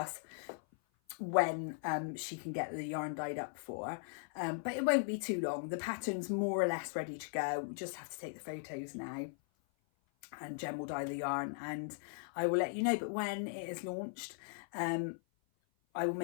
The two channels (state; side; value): silent; right; 52 dB below the other